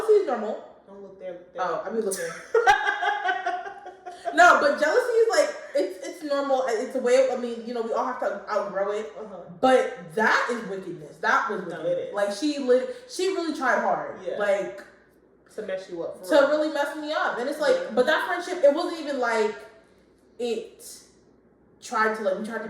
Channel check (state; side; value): identical; both; correlation 1.00